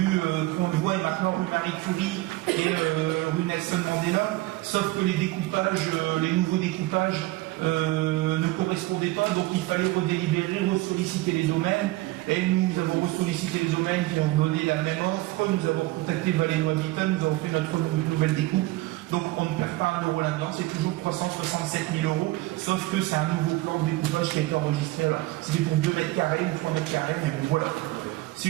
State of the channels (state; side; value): quieter; left; 18.9 dB